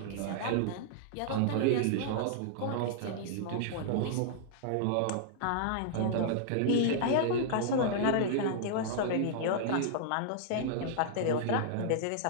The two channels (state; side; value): different; both; correlation -0.01